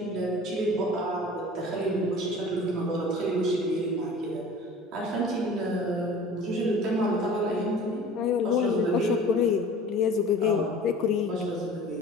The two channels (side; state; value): both; normal; correlation 0.43